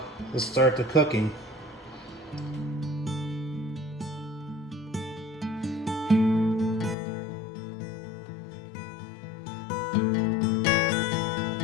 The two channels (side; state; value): right; drops out; at 7.0 s